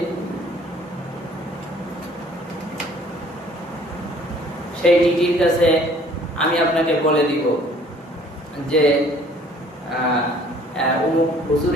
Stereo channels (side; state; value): both; normal; correlation 0.56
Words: সেই টিটির কাছে আমি আপনাকে বলে দিব যে অমুক